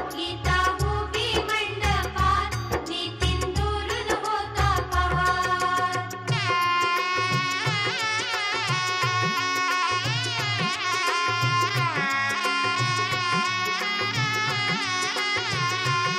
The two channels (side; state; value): both; identical; correlation 1.00